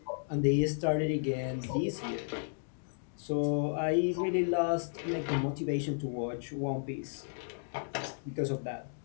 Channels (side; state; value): right; silent; digital silence